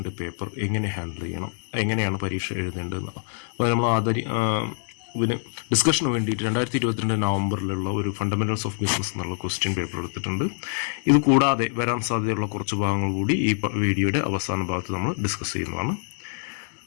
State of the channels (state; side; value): silent; right; 62 dB below the other